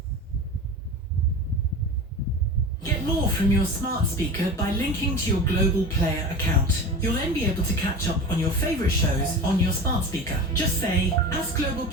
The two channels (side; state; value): both; normal; correlation 0.31